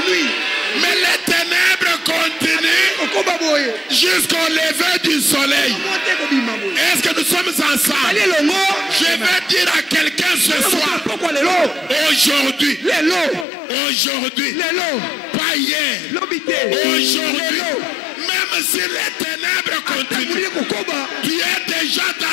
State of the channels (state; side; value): drops out; right; at 13.5 s